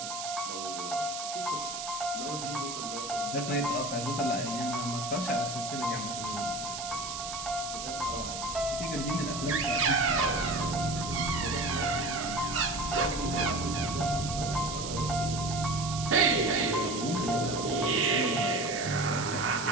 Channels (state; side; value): noise; right; hiss, 6 dB below the sound